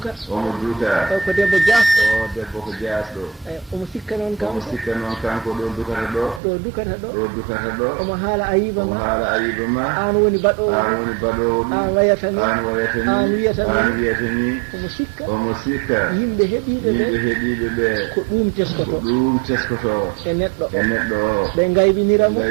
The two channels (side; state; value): left; drops out; at 6.4 s